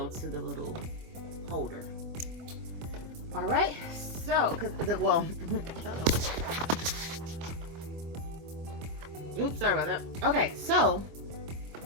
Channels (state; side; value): late; left; 25 ms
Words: to the little holder. All right, so oops, sorry about that. Okay, so